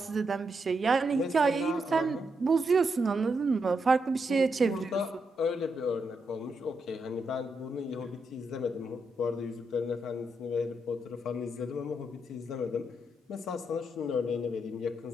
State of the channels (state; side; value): normal; both; correlation 0.82